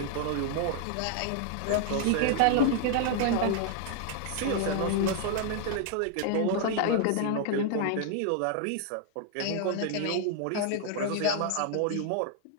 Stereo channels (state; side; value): different; both; correlation 0.00